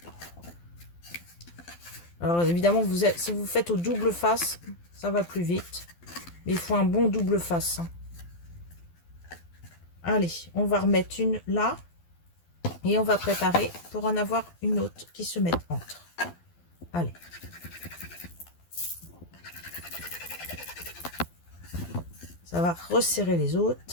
Alors, évidemment, si vous faites au double face, ça va plus vite. Mais il faut un bon double face. Allez, on va remettre une là. Et on va préparer pour en avoir une autre qui se mette entre. Allez. Ça va resserrer les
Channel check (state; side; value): late; right; 12 ms